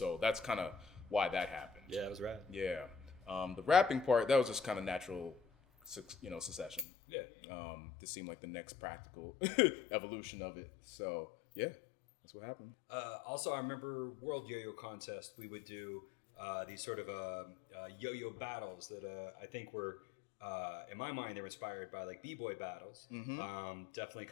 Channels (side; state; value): right; drops out; at 6.9 s